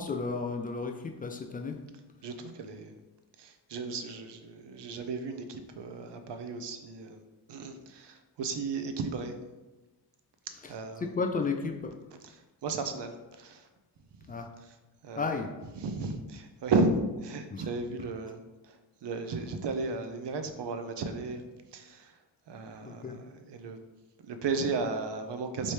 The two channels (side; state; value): both; normal; correlation 0.10